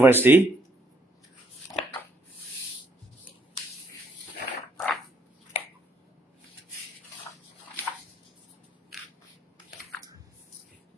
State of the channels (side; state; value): both; normal; correlation 0.70